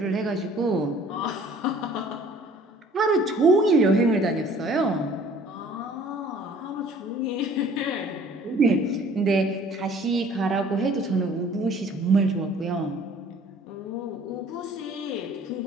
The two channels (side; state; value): both; normal; correlation 0.53